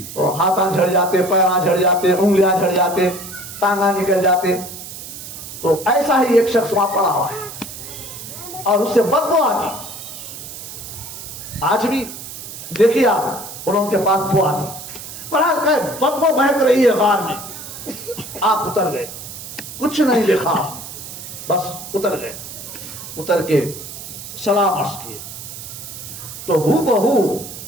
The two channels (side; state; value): right; noise; hiss, 11 dB below the sound